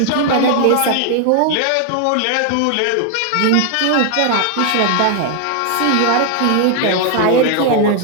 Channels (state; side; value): different; both; correlation 0.00